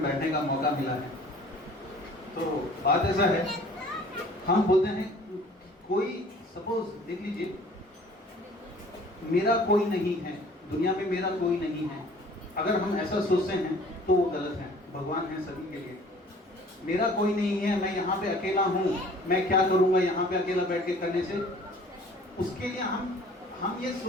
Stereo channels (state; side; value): normal; both; correlation 0.51